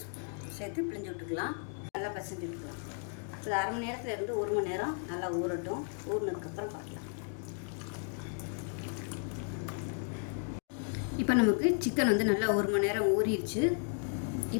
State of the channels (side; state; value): right; silent; 55 dB below the other